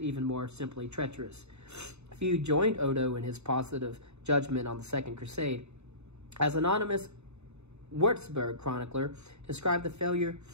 even more simply treacherous. Few joined Odo in his positive judgment on the Second Crusade. As anonymous Würzburg chronicler described the failure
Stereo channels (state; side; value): late; left; 0.81 ms